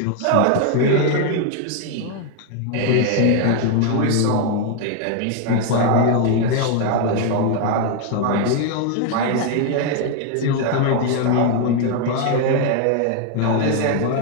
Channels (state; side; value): different; both; correlation 0.00